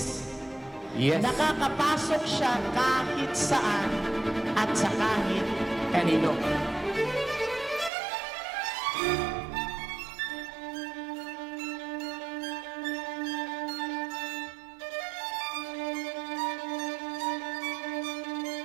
Yes. Nakakapasok siya kahit saan at sa kahit kanino.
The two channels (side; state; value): left; drops out; at 7.9 s